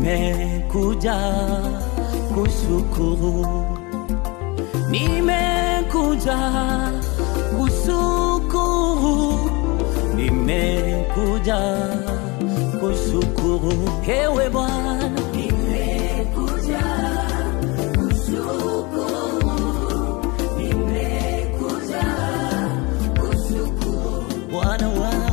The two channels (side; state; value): right; quieter; 26.2 dB